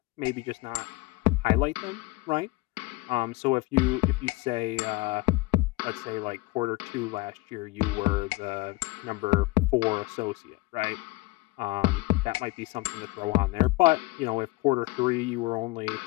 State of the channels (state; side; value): quieter; right; 22.0 dB